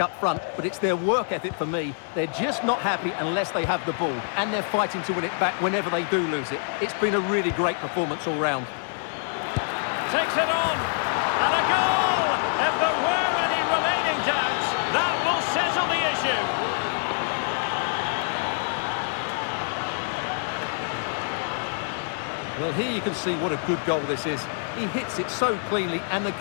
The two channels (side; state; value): right; silent; digital silence